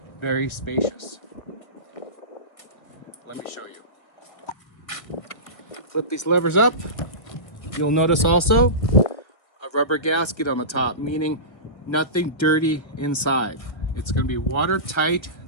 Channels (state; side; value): late; right; 1.3 ms